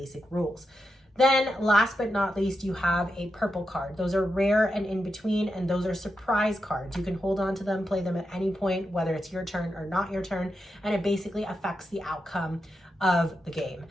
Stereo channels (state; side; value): normal; both; correlation 0.87